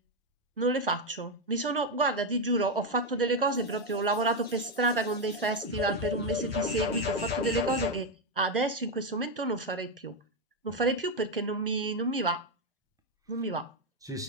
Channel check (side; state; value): both; normal; correlation 0.06